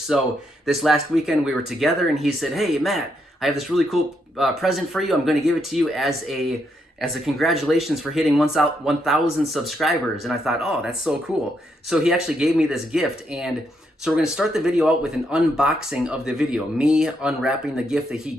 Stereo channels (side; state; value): both; normal; correlation 0.78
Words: this last weekend we were together, and he said, "Hey, Matt, I have this really cool present for you. I'm going to give it to you as a congratulations for hitting 1,000 subscribers." And I thought, oh, that's so cool. So he actually gave me this gift. And so we're going to start the video out with an unboxing of the video, me unwrapping the gift that he